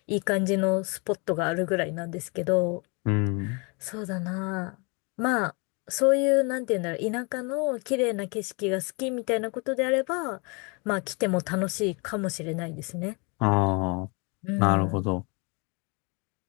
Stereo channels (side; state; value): right; quieter; 31.9 dB